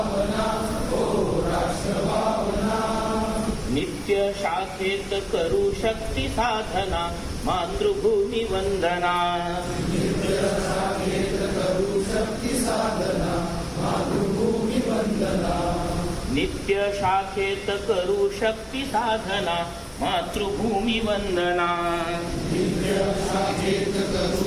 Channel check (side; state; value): both; identical; correlation 1.00